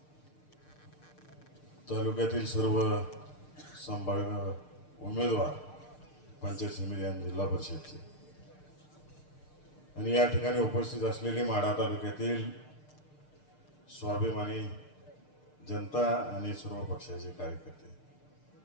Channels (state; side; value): late; right; 6.6 ms